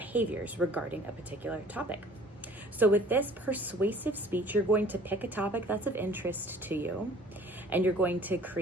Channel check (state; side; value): normal; both; correlation 0.51